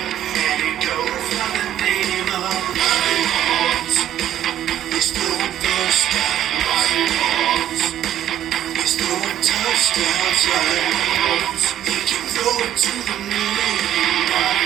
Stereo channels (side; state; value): left; quieter; 11.5 dB